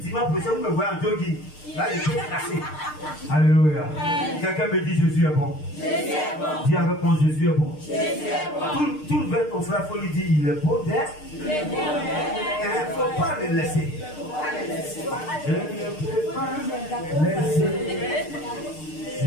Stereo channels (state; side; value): late; right; 6.6 ms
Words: prochain vous me voyez en jogging. Là, je suis cassé. Alléluia. Quelqu'un me dit Jésus est bon. Jésus est bon. Dis avec moi Jésus est bon. Jésus est bon. Tout vers ton frère, il faut lui dire il est beau d'être. Il est beau d'être. Il ne faut pas le laisser. Je ne peux pas laisser.